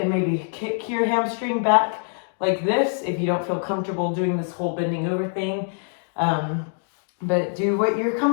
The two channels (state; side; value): silent; right; digital silence